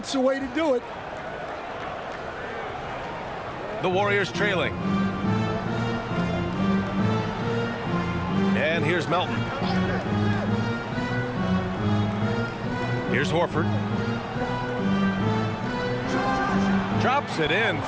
the way to do it. The Warriors trailing. And here's Melton. Here's Horford. Drops it in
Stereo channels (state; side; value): identical; both; correlation 1.00